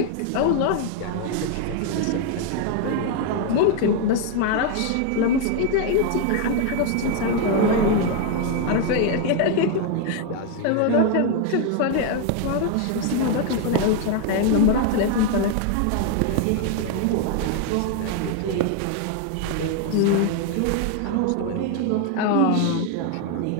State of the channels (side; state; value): both; different; correlation 0.01